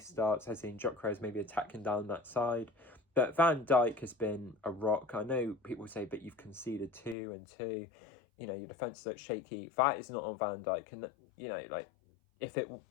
starts? Eze and Gyökeres maybe attacking down that side. But Van Dijk has been a rock. I know people say, but you've conceded 2 and 2. You know, your defence looks shaky. That is not on Van Dijk. And, you know, like, if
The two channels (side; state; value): right; drops out; at 7.2 s